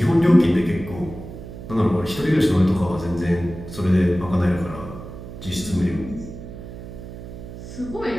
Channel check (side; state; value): right; noise; hum, 12 dB below the sound